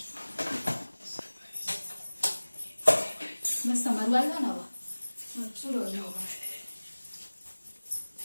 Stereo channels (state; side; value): inverted; both; correlation -1.00